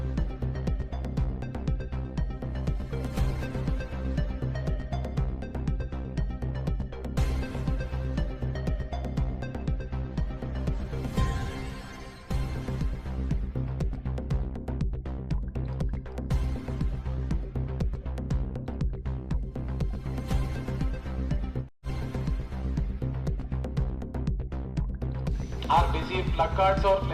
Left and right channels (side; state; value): both; identical; correlation 1.00